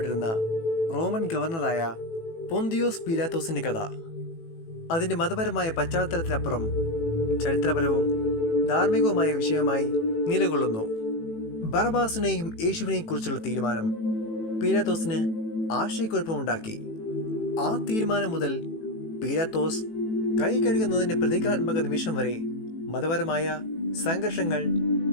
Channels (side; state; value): right; late; 18 ms